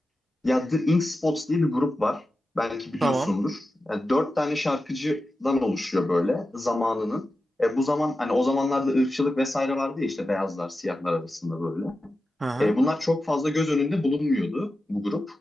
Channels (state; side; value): normal; both; correlation 0.92